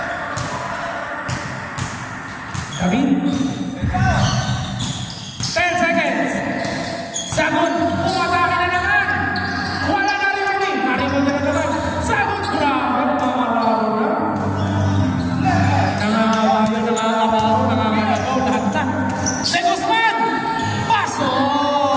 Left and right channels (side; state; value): both; identical; correlation 1.00